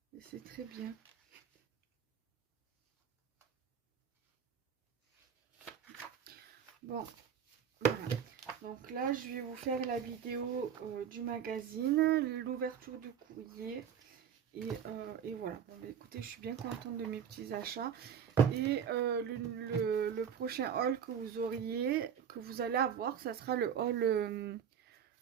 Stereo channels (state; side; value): quieter; left; 8.1 dB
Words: Et c'est très bien. Bon, voilà. Donc là, je vais vous faire la vidéo du magazine, l'ouverture du courrier. Et voilà. Bon, bah, écoutez, je suis bien contente de mes petits achats. Et le prochain haul que vous allez avoir, ça sera le haul